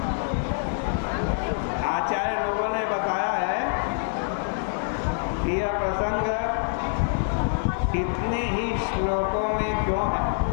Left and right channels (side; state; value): right; silent; 61 dB below the other